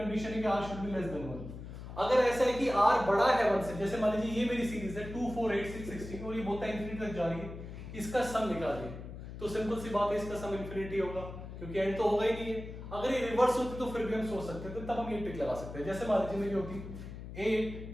है कि r should be less than 1। अगर ऐसा है कि r बड़ा है 1 से, जैसे मान लीजिए ये मेरी सीरीज है 2, 4, 8, 6, 16, और ये बोलता है इंफिनिटी तक जा रही है, इसका सम निकालिए। तो सिंपल सी बात है, इसका सम इंफिनिटी होगा, क्योंकि एंड तो होगा ही नहीं है। अगर ये रिवर्स होती तो फिर भी हम सोच सकते थे, तो तब हम ये ट्रिक लगा सकते हैं। जैसे मान लीजिए मेरी होती 8,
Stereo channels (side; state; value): left; noise; hum, 11 dB below the sound